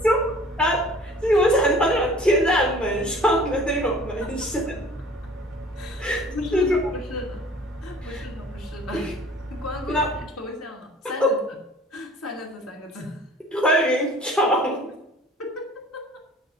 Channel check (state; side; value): normal; both; correlation 0.49